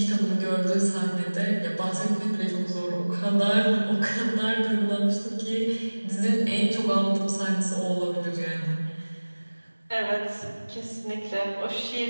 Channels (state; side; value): inverted; both; correlation -1.00